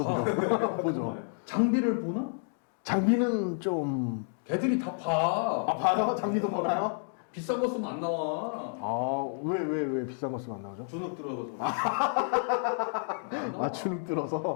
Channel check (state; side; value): silent; right; 58 dB below the other